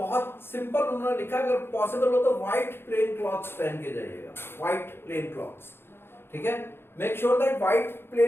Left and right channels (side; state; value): right; late; 0.11 ms